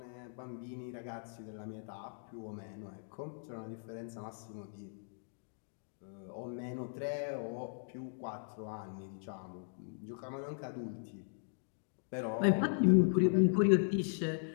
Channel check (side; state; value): right; silent; digital silence